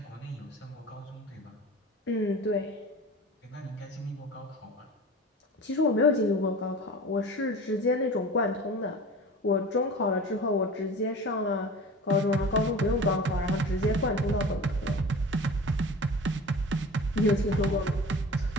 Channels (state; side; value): normal; both; correlation 0.37